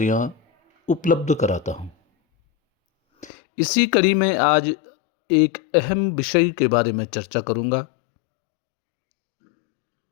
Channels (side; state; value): right; drops out; at 3.3 s